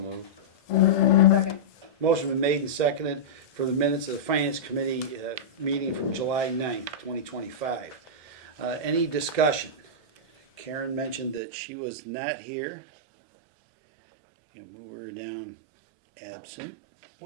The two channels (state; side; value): drops out; left; at 11.4 s